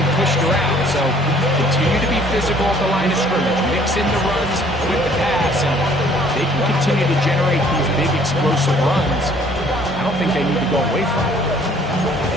pushed around. So continue to be physical at the line of scrimmage. Mix in the runs with the pass. And they can continue to generate these big explosive runs. I don't think they need to go away from it.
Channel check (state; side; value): normal; both; correlation 0.58